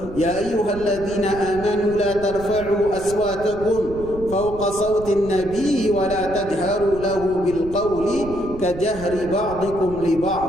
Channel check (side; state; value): right; noise; rumble, 13 dB below the sound